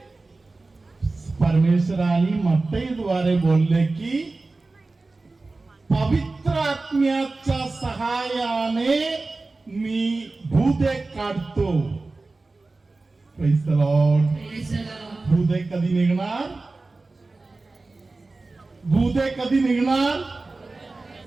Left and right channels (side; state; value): left; quieter; 3.4 dB